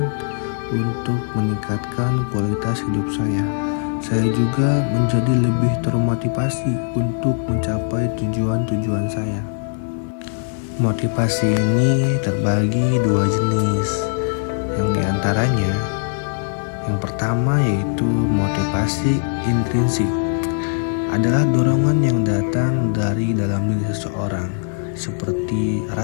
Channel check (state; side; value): silent; right; digital silence